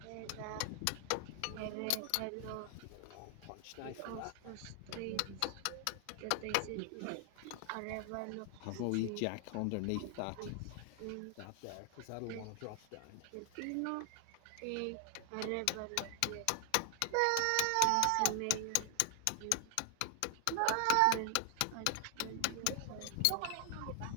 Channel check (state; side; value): different; both; correlation 0.00